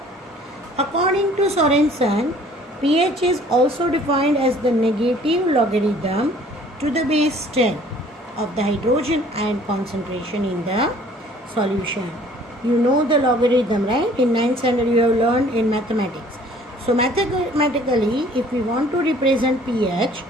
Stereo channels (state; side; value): normal; both; correlation 0.54